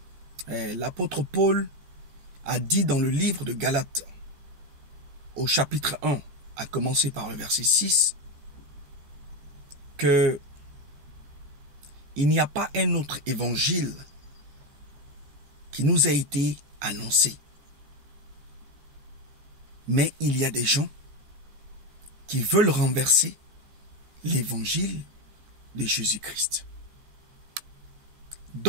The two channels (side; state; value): left; late; 14 ms